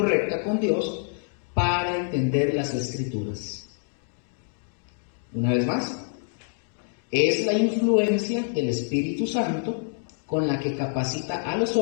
con Dios para entender las Escrituras. Una vez más, es la influencia del Espíritu Santo con la que capacita a los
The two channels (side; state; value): right; silent; 61 dB below the other